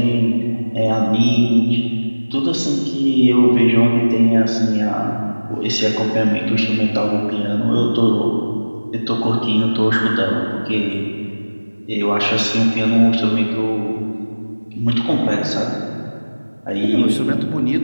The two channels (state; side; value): inverted; both; correlation -1.00